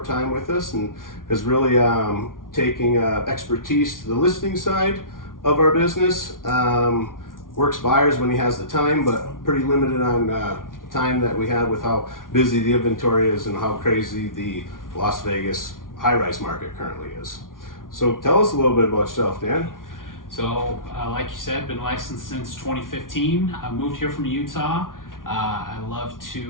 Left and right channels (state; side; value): late; right; 0.89 ms